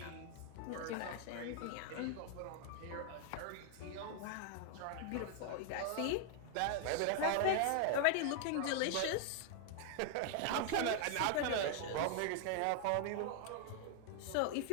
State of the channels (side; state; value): both; different; correlation 0.00